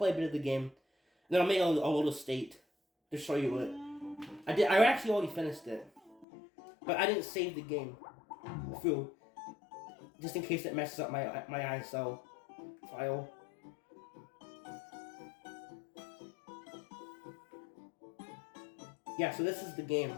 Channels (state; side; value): drops out; right; at 6.2 s